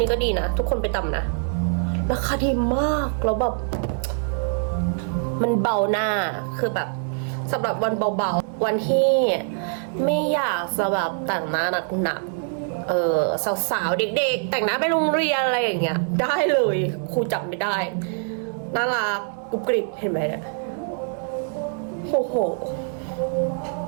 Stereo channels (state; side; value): silent; left; 63 dB below the other